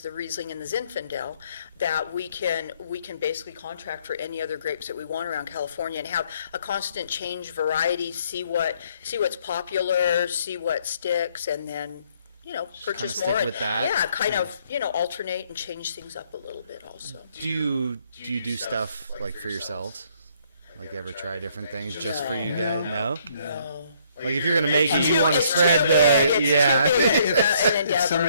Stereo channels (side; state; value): both; inverted; correlation -0.66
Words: the Riesling and the Zinfandel, that we can basically contract for any other grapes that we want around California and have a constant change variety, see what's popular, see what sticks, and then purchase stick more. And, with that. yeah, kind of, alternate and change things up a little bit also. Do you do stuff like for yourselves? Like ever try different things just for you guys? No? No. Like if you're gonna make it, It's you too- want to it's spread too the big. It's yeah. too big. It's an If endeavor.